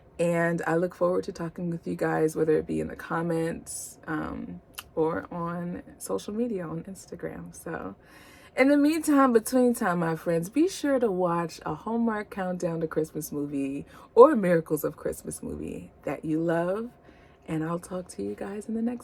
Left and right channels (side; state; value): both; identical; correlation 1.00